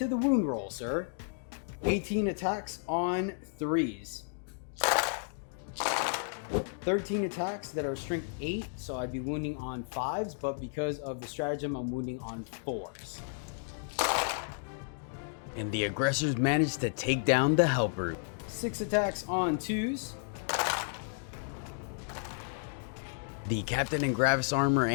the wound roll, sir. 18 attacks on 3s. 13 attacks that are strength 8, so I'd be wounding on 5s, but because of the stratagem, I'm wounding on 4s. And the aggressors managed to take down the Hellbrute. 6 attacks on 2s. The captain and Gravis armor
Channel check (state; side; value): silent; right; digital silence